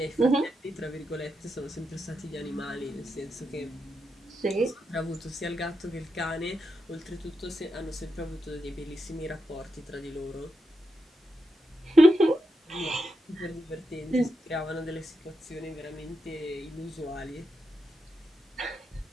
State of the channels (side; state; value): both; normal; correlation 0.86